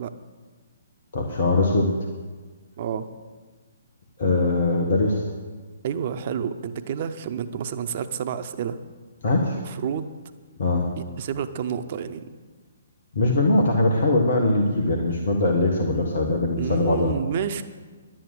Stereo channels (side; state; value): both; inverted; correlation -0.62